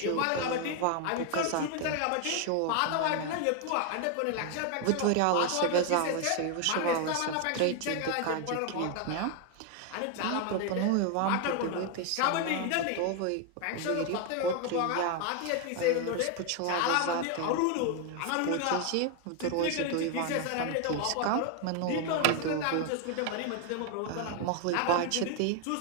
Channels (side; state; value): both; different; correlation 0.01